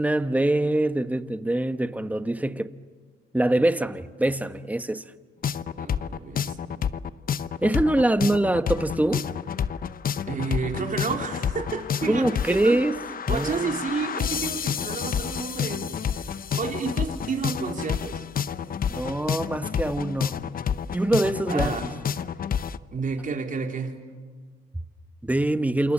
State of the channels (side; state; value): both; normal; correlation 0.76